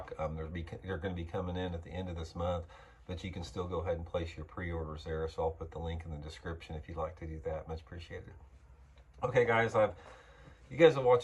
They're going to be coming in at the end of this month, but you can still go ahead and place your pre-orders there. So I'll put the link in the description if you'd like to do that. Much appreciated. Okay, guys, you guys have watched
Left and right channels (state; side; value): identical; both; correlation 1.00